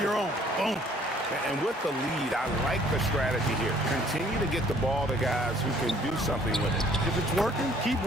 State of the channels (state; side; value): normal; both; correlation 0.59